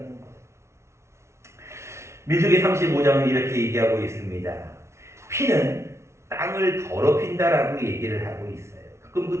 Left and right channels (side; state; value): left; late; 0.13 ms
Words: 거예요. 민수기 35장은 이렇게 얘기하고 있습니다. 피는 땅을 더럽힌다라고 얘기를 하고 있어요. 그럼 그